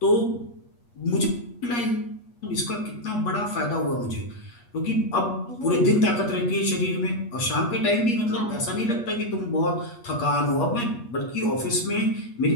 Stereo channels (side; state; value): right; late; 8.4 ms